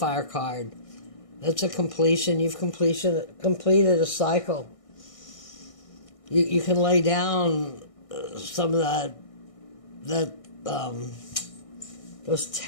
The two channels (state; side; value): late; right; 1.6 ms